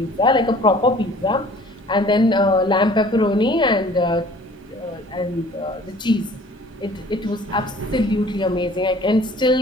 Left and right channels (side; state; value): both; normal; correlation 0.51